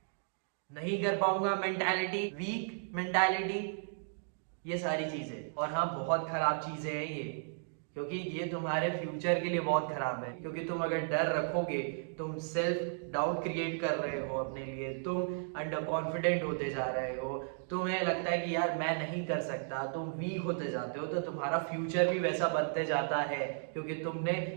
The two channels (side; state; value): left; silent; digital silence